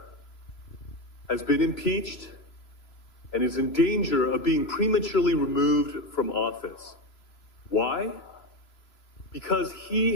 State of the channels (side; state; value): right; late; 3.0 ms